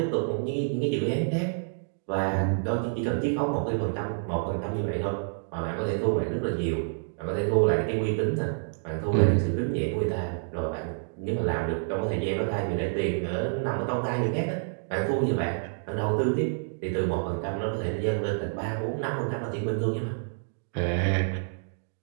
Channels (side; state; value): left; silent; digital silence